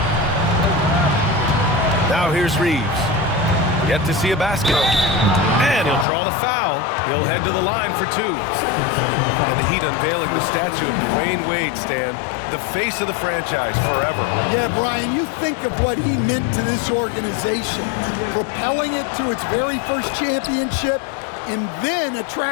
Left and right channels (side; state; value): right; drops out; at 6.1 s